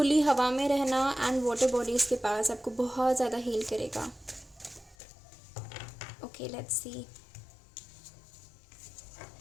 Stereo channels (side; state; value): right; drops out; at 5.0 s